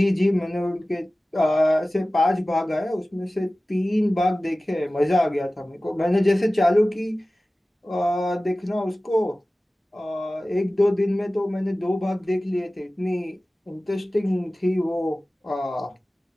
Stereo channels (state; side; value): normal; both; correlation 0.97